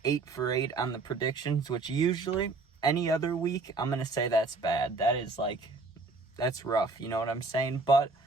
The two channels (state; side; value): quieter; left; 3.7 dB